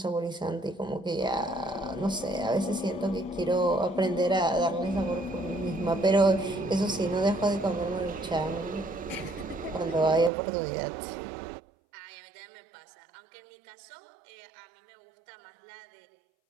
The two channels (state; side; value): drops out; left; at 10.3 s